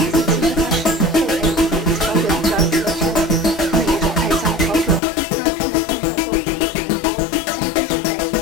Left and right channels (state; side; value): drops out; right; at 5.0 s